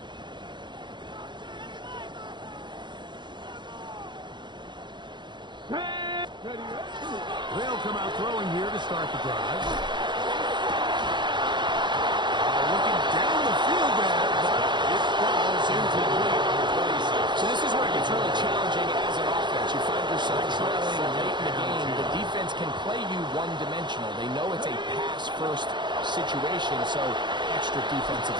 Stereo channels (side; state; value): left; late; 0.22 ms